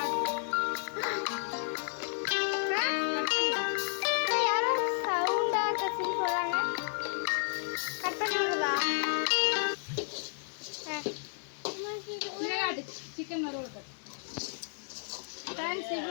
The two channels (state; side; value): silent; right; digital silence